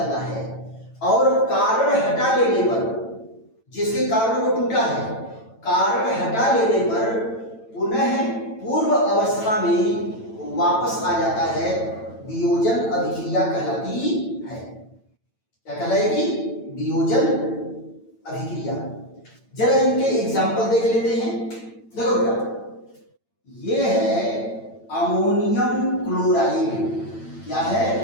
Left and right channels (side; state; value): right; late; 8.9 ms